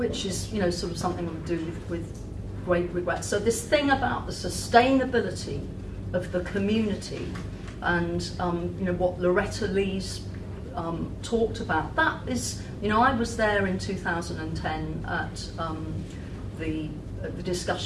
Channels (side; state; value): both; identical; correlation 1.00